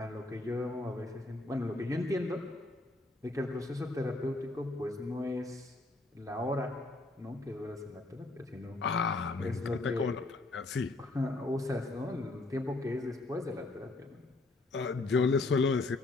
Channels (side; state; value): right; quieter; 3.1 dB